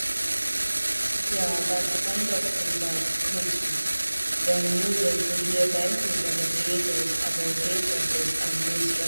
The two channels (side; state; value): both; inverted; correlation -1.00